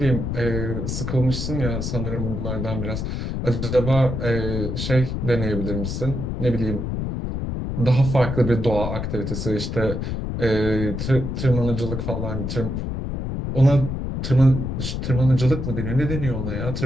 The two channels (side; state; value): left; noise; rumble, 3 dB below the sound